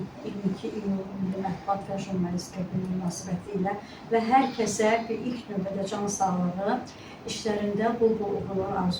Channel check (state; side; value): identical; both; correlation 1.00